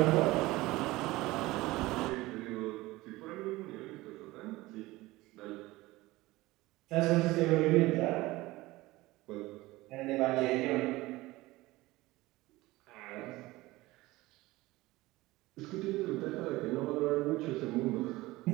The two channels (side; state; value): left; quieter; 19.4 dB